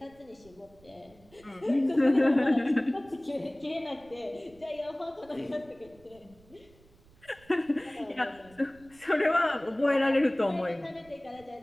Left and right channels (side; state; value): right; noise; rumble, 28 dB below the sound